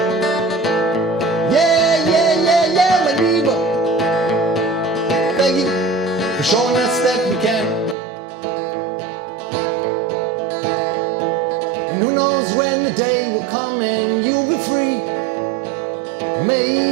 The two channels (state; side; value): drops out; left; at 8.0 s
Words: For showing us that we can. And who knows when the day will come and you'll be free. It